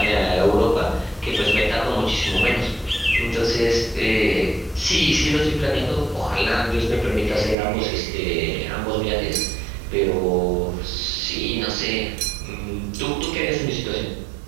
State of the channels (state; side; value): drops out; left; at 7.6 s